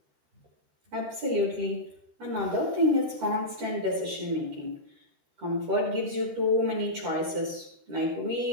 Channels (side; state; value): left; late; 12 ms